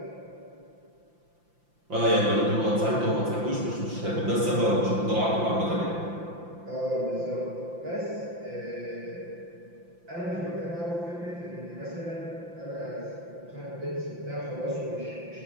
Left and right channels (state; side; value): late; left; 5.8 ms